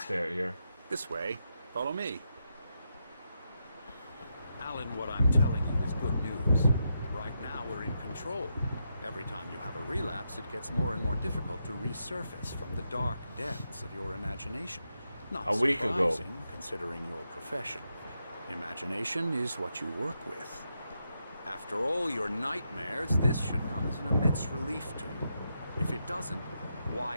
stay out here. This way. Follow me. Alan, what I'm telling you is good news. Right now, we're in control. Every time you have a relapse, it gets more and more difficult to resurface from the dark depths of your imagination. Not A week ago. surprising, considering your profession. Imagination is what you work with. After all your nightmares, this should come as an immense relief to you. If it doesn't, why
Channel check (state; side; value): inverted; both; correlation -0.84